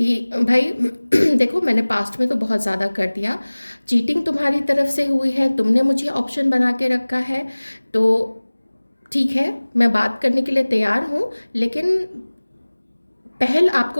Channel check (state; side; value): inverted; both; correlation -1.00